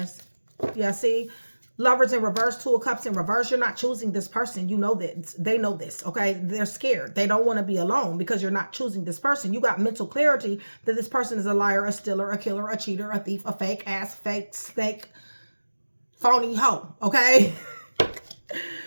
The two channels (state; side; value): inverted; both; correlation -1.00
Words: Yeah, see? Lovers in reverse, Two of Cups in reverse. You're not choosing this person. You know that. They know this, okay? They're scared. They don't want to be alone because you're not choosing this person. You got mental clarity that this person is a liar, a stealer, a killer, a cheater, a thief, a fake ass, fake, snake, phony hoe, okay?